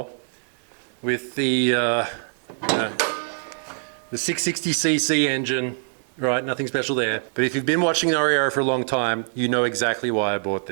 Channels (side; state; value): left; silent; digital silence